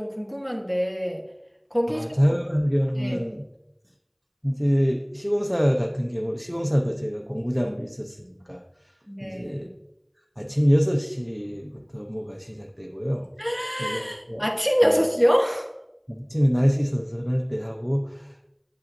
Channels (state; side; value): identical; both; correlation 1.00